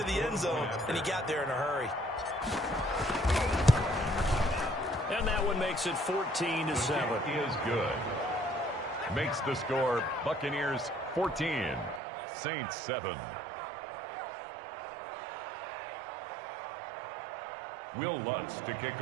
the end zone, and he got there in a hurry. And that one makes it 14-7. Is good. Makes the score Buccaneers 14, Saints 7. Will Lutz to kick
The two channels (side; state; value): left; drops out; at 12.0 s